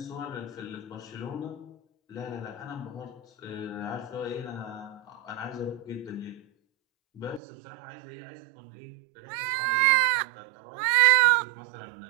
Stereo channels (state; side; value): drops out; left; at 7.4 s